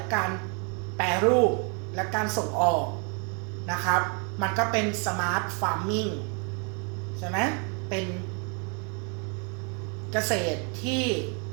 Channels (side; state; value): left; quieter; 37.0 dB